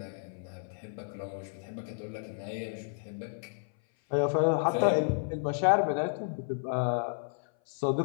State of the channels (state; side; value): silent; right; 57 dB below the other